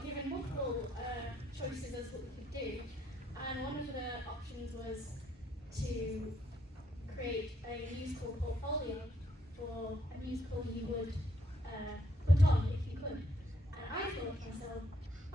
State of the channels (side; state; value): both; normal; correlation 0.71